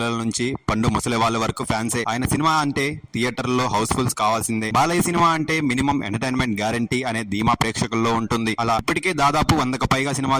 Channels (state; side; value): identical; both; correlation 1.00